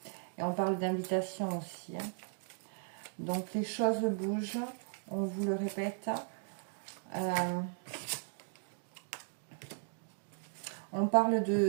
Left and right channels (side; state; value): left; silent; digital silence